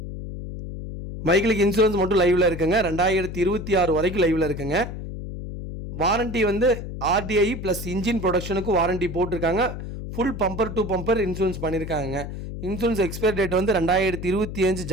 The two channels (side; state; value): left; noise; hum, 8 dB below the sound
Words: வெஹிக்கிளுக்கு இன்சூரன்ஸ் மட்டும் லைவில் இருக்குங்க. 2026 வரைக்கும் லைவில் இருக்குங்க. வாரண்ட்டி ஆர்டிஐ ப்ளஸ் இன்ஜின் ப்ரொடக்ஷனுக்கு வாரண்ட்டி போட்டிருக்காங்க. Full bumper to bumper insurance பண்ணியிருக்காங்க. இன்சூரன்ஸ் எக்ஸ்பயர் டேட் 2025